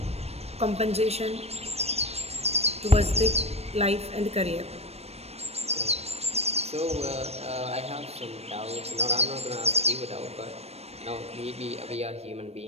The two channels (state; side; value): late; left; 0.30 ms